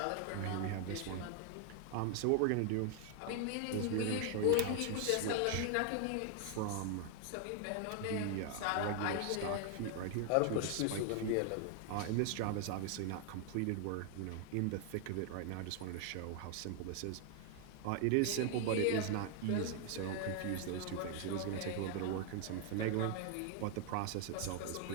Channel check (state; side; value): different; both; correlation 0.00